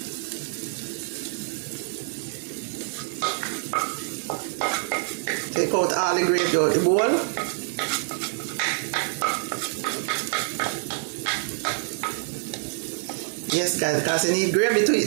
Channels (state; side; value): silent; left; digital silence